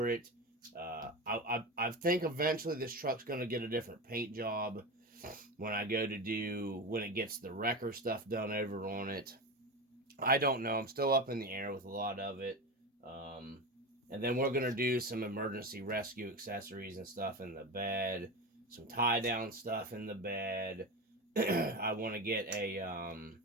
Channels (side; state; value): both; normal; correlation 0.22